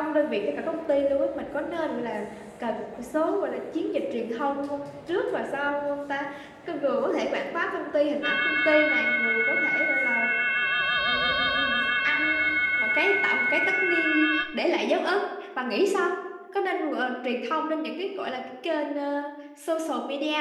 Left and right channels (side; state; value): both; identical; correlation 1.00